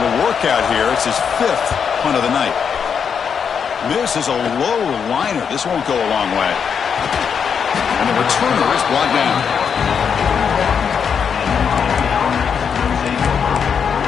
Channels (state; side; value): quieter; right; 6.9 dB